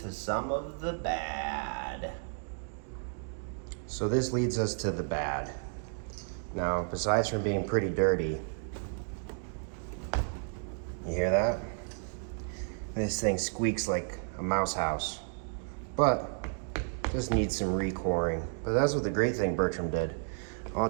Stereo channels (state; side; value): silent; left; 56 dB below the other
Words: to some of the bad. So this leads us to the bad. Now, besides from being pretty dirty, You hear that? This thing squeaks like a mouse house, but just needs some recoring. But that's what the great thing Bertram did. All